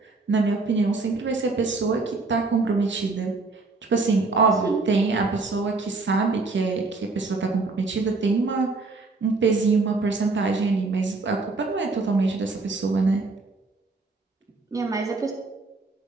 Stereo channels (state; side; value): quieter; left; 3.7 dB